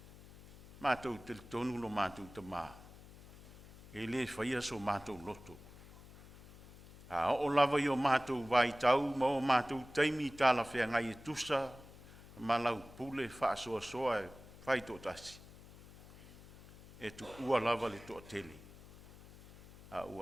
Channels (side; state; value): left; noise; hum, 19 dB below the sound